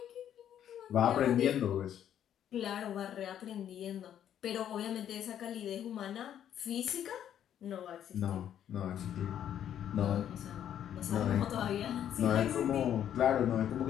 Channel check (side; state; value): right; quieter; 10.1 dB